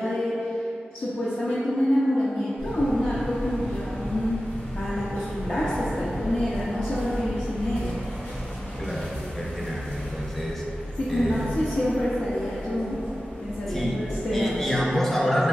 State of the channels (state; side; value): normal; both; correlation 0.94